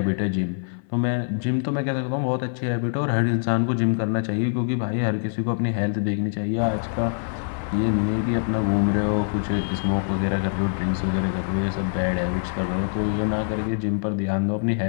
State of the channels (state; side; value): silent; right; 56 dB below the other